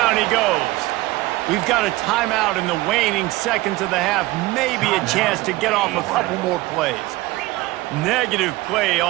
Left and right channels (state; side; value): quieter; left; 19.4 dB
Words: he goes. We've got a timeout in the waning seconds of the half. Maybe a chance to get off a couple more plays. Negative play